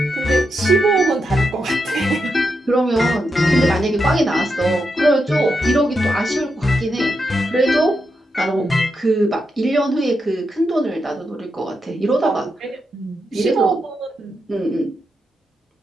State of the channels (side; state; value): both; normal; correlation 0.85